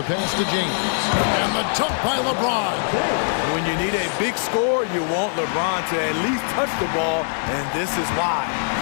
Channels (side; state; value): right; silent; digital silence